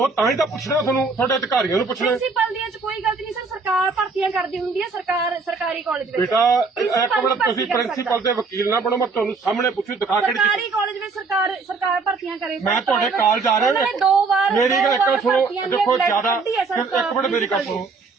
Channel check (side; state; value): left; quieter; 4.4 dB